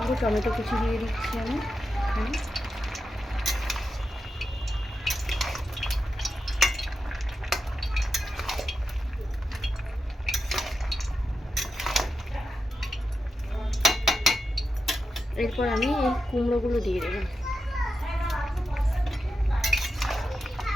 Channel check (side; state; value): both; normal; correlation 0.88